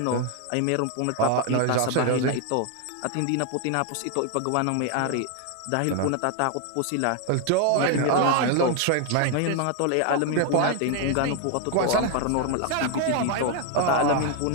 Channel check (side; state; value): both; different; correlation 0.01